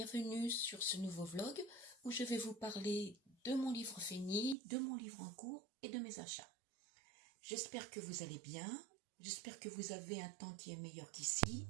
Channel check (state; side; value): drops out; left; at 4.5 s